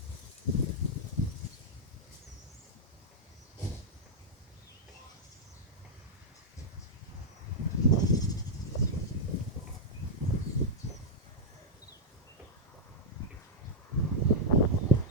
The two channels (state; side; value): normal; both; correlation -0.05